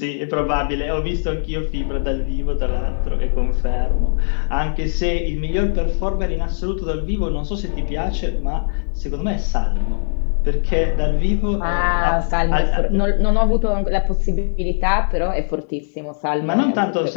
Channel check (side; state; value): right; silent; digital silence